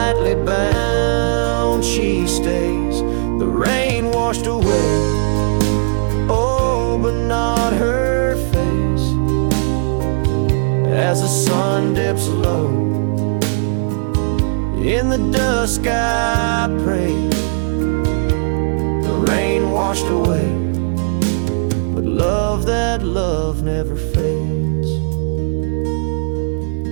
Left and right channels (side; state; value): left; silent; digital silence